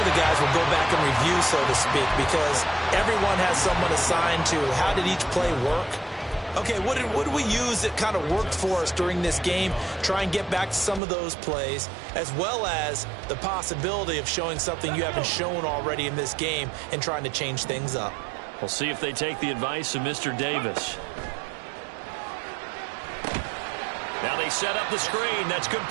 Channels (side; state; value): left; drops out; at 11.0 s